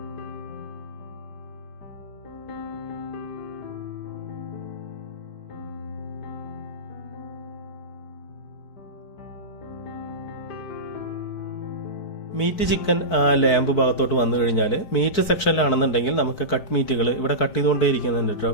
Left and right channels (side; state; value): right; late; 4.6 ms